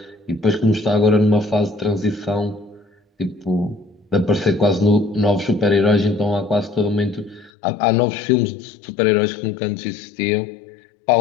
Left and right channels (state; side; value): drops out; right; at 7.5 s